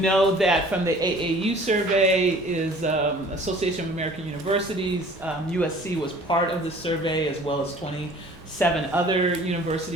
that from the AAU survey is Association of American Universities. USC was part of the survey, as well as 27 other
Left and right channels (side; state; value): both; normal; correlation 0.50